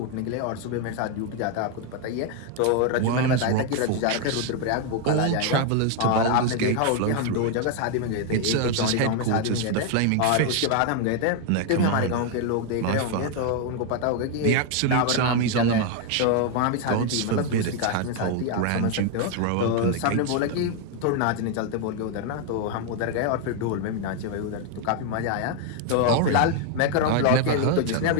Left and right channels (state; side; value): different; both; correlation 0.01